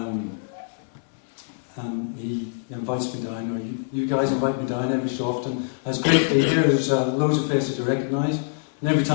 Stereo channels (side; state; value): right; silent; digital silence